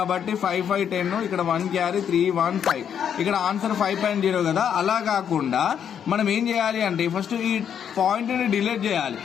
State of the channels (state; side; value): quieter; right; 8.4 dB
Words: 5-5 10, ఇక్కడ 1 క్యారీ 3-1-5, ఇక్కడ ఆన్సర్ 5.0 కదా. అలా కాకుండా మనం ఏం చేయాలి అంటే ఫస్ట్ ఈ పాయింట్ ని డిలీట్ చేయాలి.